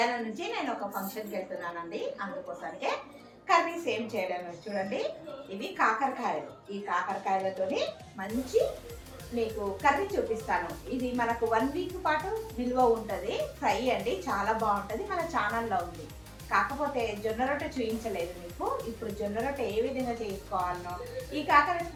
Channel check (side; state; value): both; identical; correlation 1.00